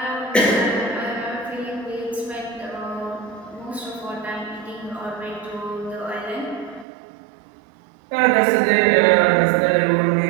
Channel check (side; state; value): left; drops out; at 6.9 s